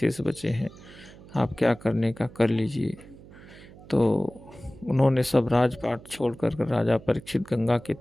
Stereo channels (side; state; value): right; noise; hum, 20 dB below the sound